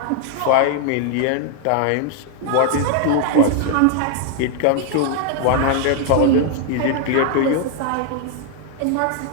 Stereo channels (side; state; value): both; different; correlation 0.00